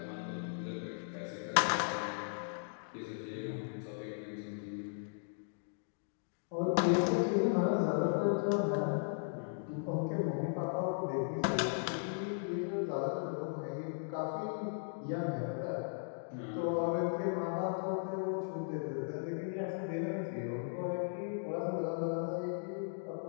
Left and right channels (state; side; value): silent; right; digital silence